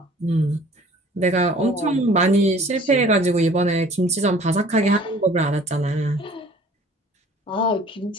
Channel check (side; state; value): both; normal; correlation 0.51